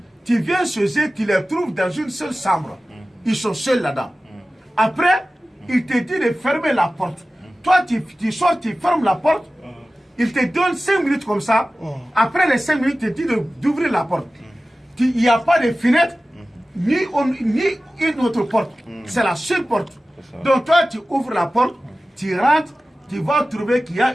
Tu viens chez eux, tu les trouves dans une seule chambre. Ils sont seuls là-dedans. Après, ils te disent de fermer la porte. Toi, tu sors, tu fermes la porte. Ils te donnent 5 minutes comme ça. Après les 5 minutes, ils te disent d'ouvrir la porte. Il n'y a pas de fenêtre, ni une autre porte. C'est la seule porte. Donc, toi, tu ouvres la porte, tu rentres, tu vas trouver qu'il y a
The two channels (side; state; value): both; normal; correlation 0.96